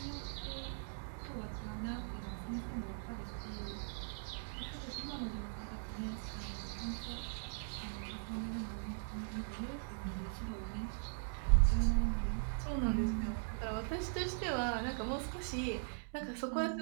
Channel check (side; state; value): left; silent; digital silence